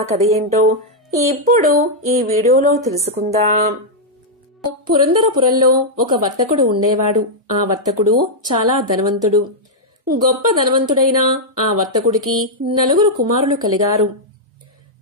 కథ ఏంటో ఇప్పుడు ఈ వీడియోలో తెలుసుకుందాం. పురందరపురంలో ఒక వర్తకుడు ఉండేవాడు. ఆ వర్తకుడు చాలా ధనవంతుడు. గొప్ప ధనవంతుడైన ఆ వర్తకుడికి 4 కుమారులు కలిగారు.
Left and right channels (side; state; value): both; normal; correlation -0.05